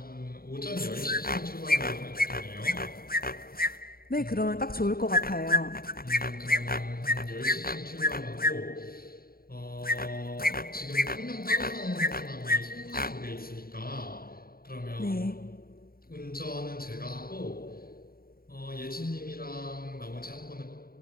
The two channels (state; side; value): late; right; 0.43 ms